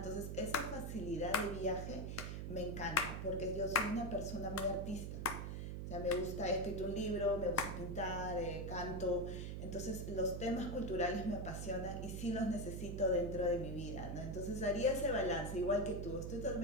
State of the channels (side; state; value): right; noise; hum, 4 dB below the sound